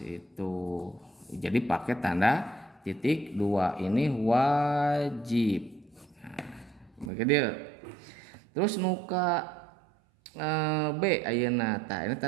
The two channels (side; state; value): left; drops out; at 7.1 s